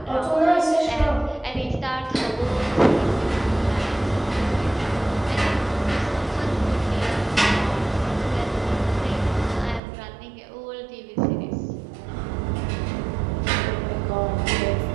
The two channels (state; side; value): drops out; left; at 9.8 s